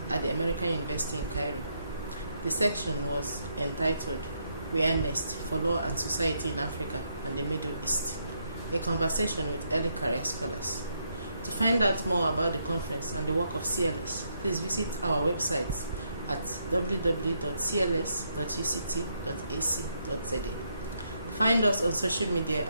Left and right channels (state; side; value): inverted; both; correlation -0.77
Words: at the American University in Cairo. The section was entitled Biennial for Law and Society in Africa and the Middle East, a conversation with early career scholars. To find out more about the conference and the work of CLS, please visit our website at www.cls.uct.ac.za. Find us on social media